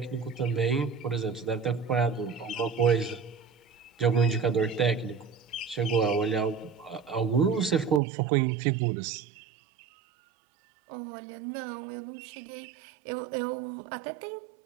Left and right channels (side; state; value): left; drops out; at 8.0 s